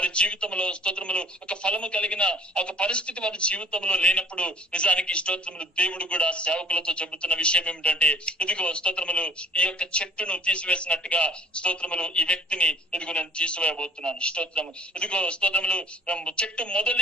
జీవితంలో స్తోత్రములు ఒక ఫలము కలిగిన ఒక పరిస్థితి వారి జీవితంలో లేనప్పుడు నిజానికి స్తోత్రములు దేవుడు కూడా సేవకులతో చెబుతున్న విషయం ఏమిటంటే, ఇదిగో స్తోత్రములు ఈ యొక్క చెట్టును తీసివేసినట్టుగా స్తోత్రములు ఈ వ్యక్తిని ఇదిగో నేను తీసివేయబోతున్నాను. స్తోత్రము. ఇదిగో స్తోత్రములు చెట్టు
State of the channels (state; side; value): normal; both; correlation 0.51